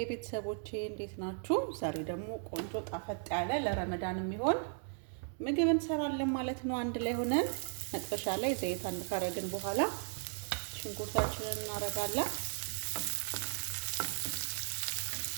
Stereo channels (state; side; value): silent; left; 54 dB below the other